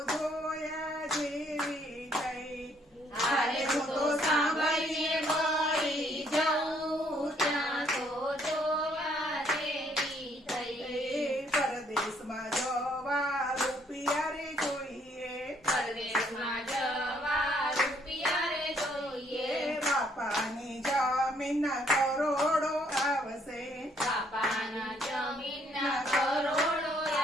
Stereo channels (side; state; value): both; normal; correlation 0.67